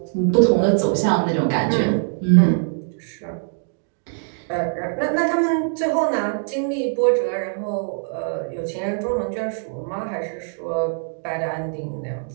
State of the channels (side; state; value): left; silent; digital silence